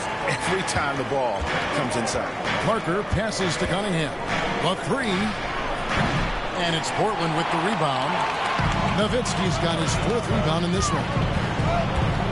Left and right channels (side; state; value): both; identical; correlation 1.00